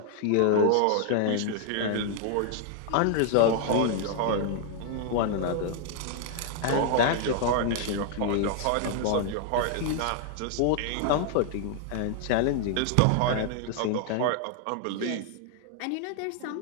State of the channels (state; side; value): different; both; correlation 0.00